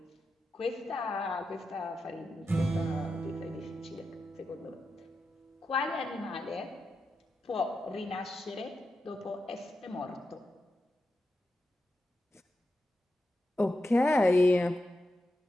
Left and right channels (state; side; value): normal; both; correlation 0.89